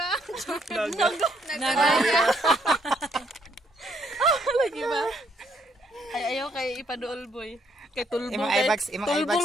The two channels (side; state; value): both; normal; correlation 0.70